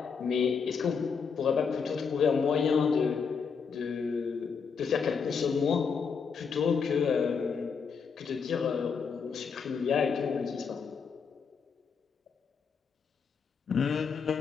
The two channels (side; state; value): right; quieter; 5.9 dB